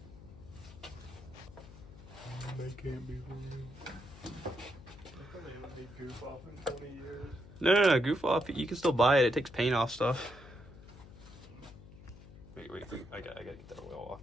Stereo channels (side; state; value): left; noise; hum, 18 dB below the sound